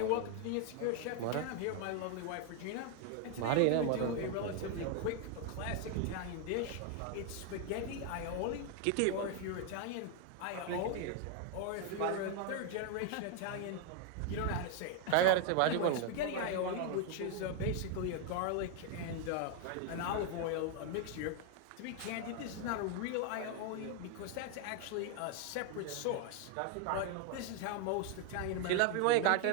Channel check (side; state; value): both; different; correlation 0.01